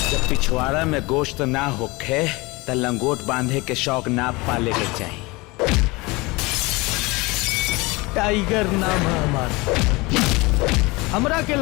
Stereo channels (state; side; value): quieter; right; 23.9 dB